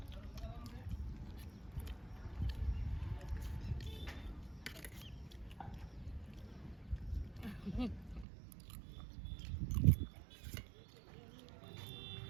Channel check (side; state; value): left; drops out; at 8.2 s